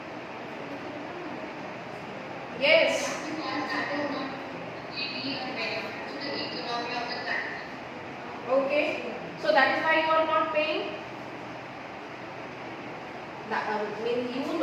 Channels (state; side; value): identical; both; correlation 1.00